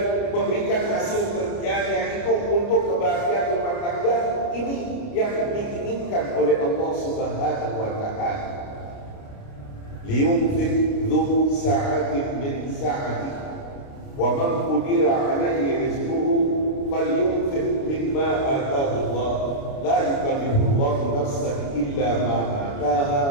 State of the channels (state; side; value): late; right; 29 ms